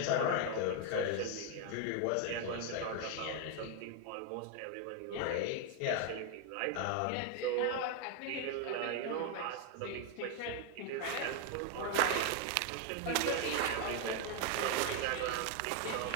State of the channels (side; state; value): both; different; correlation 0.00